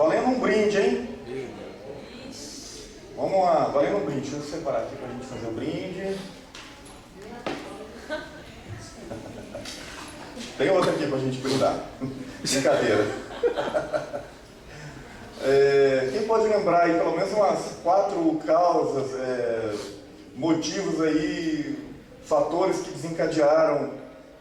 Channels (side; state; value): both; identical; correlation 1.00